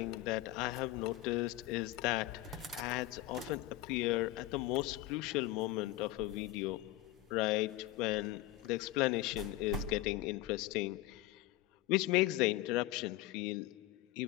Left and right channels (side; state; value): right; quieter; 15.8 dB